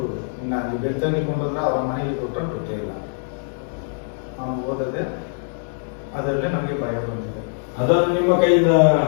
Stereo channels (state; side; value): silent; right; digital silence